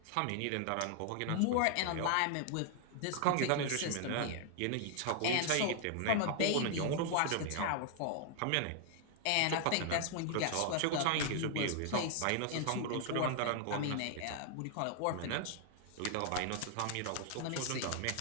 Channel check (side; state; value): both; different; correlation 0.00